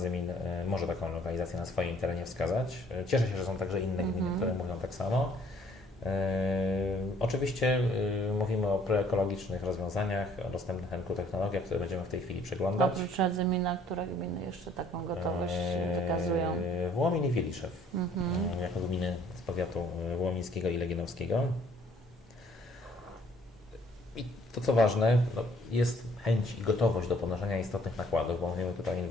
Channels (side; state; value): both; normal; correlation 0.60